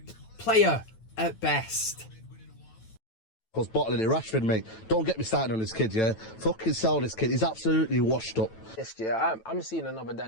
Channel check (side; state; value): right; late; 9.1 ms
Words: player at best. Was bottling it, Rashford, mate. Don't get me started on this kid, yeah? Fucking sell this kid. He's absolutely washed up. Yes, yeah, I'm seeing another